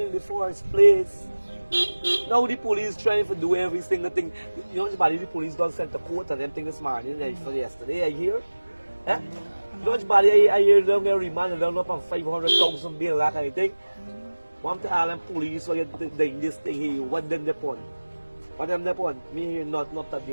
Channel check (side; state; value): both; inverted; correlation -1.00